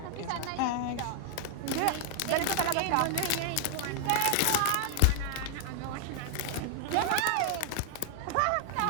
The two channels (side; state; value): both; different; correlation 0.00